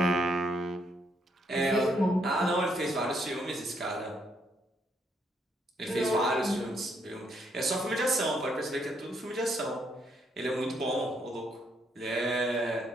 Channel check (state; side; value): normal; both; correlation 0.73